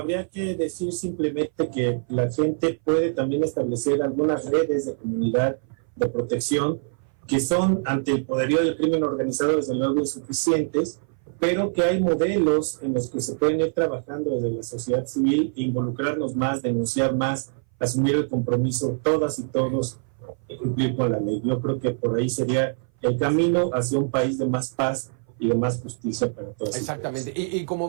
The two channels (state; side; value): silent; left; 59 dB below the other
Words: que decir simplemente que la gente puede también establecer algunas redes de comunidad de protección que son, ante el poderío del crimen organizado, desde luego insuficientes, pero que hay modelos en los que se pueden ir trabajando desde la sociedad civil, involucrarnos más, denunciar más, asumir el compromiso todas y todos de cumplir con la ley. Yo creo que por ahí sería el camino hacia un país de más paz y de más justicia para todos. Exactamente. Y como